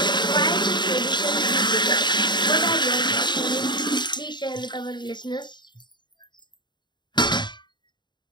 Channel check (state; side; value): late; right; 0.22 ms